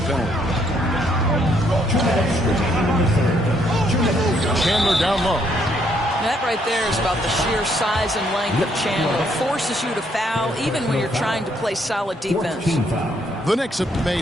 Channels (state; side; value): normal; both; correlation 0.71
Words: penalty. Chandler down low. That right there is about the sheer size and length of Chandler. Forces you to foul even when you're trying to play solid defense. The Knicks have